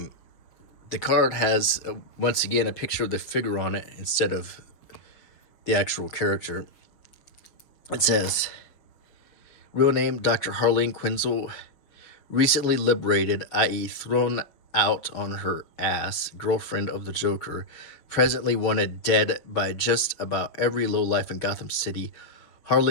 card has, once again, a picture of the figure on it instead of the actual character. It says, real name, Dr. Harleen Quinzel, recently liberated, i.e. thrown out on her ass, girlfriend of the Joker, presently wanted dead by just about every lowlife in Gotham City.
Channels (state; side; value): late; right; 6.2 ms